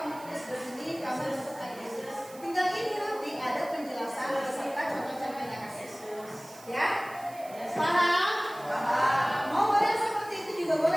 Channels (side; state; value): right; noise; hiss, 20 dB below the sound